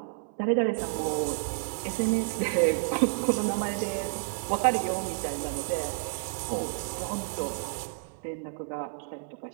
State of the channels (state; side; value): silent; left; 58 dB below the other